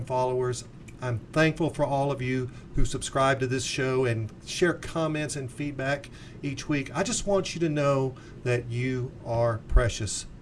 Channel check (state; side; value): identical; both; correlation 1.00